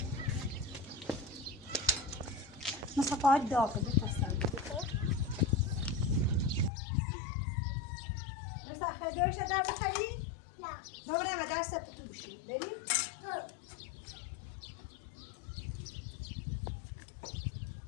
مثلا فقط داغ بپسند مثلا خیلیوش در بخری؟ نه ببریم و در سبت تو بشیم بریم؟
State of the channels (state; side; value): drops out; right; at 6.7 s